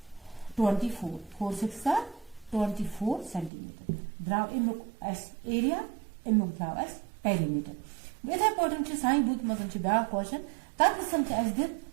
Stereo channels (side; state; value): left; drops out; at 3.5 s